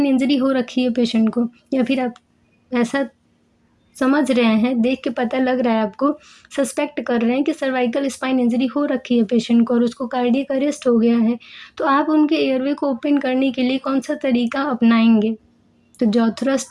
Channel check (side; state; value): both; identical; correlation 1.00